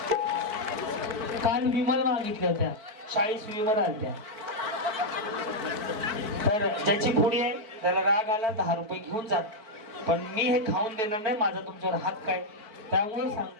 काल विमल मागितल्या होत्या. 40 विवर आलत्या. तर ज्याची पुढी आहे त्याला राग आला 10 रुपये घेऊन जा, पण मी हे खाऊन देणार नाही, माझा तुमच्यावर हक्क आहे. त्यामुळे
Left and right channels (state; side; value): late; left; 4.5 ms